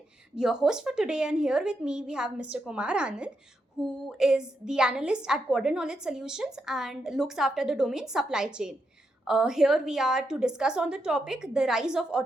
your host for today, and here with me we have Mr. Kumar Anand, who is the analyst at Quadrant Knowledge Solutions and looks after the domain supply chain. Here we are to discuss on the topic the rise of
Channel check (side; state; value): both; normal; correlation 0.83